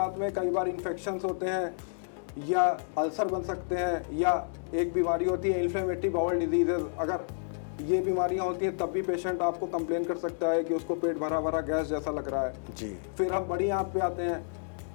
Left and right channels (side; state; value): right; silent; digital silence